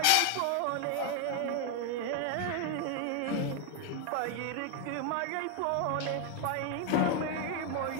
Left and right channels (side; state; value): both; different; correlation 0.01